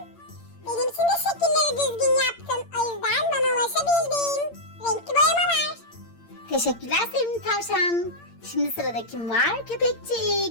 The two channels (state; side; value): late; right; 8.8 ms